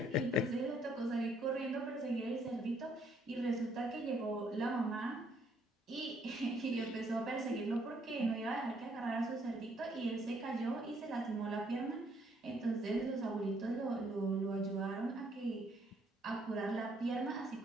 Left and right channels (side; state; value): both; normal; correlation 0.68